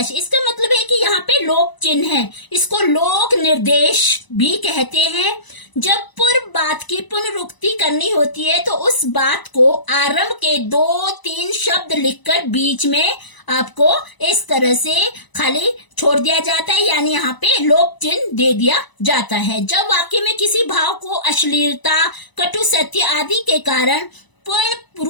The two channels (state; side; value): late; right; 1.0 ms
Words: इसका मतलब है कि यहाँ पे लोक चिन्ह है, इसको लोक निर्देश भी कहते हैं। जब पूर्व बात की पुनरुक्ति करनी होती है तो उस बात को आरंभ के 2-3 शब्द लिखकर बीच में आपको इस तरह से खाली छोड़ दिया जाता है, यानी यहाँ पे लोक चिन्ह दे दिया जाता है। जब वाक्य में किसी भाव को अश्लीलता, कटु सत्य आदि के कारण पूर्ण